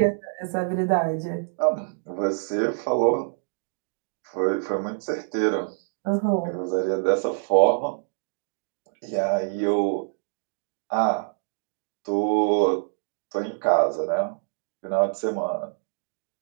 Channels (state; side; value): silent; left; digital silence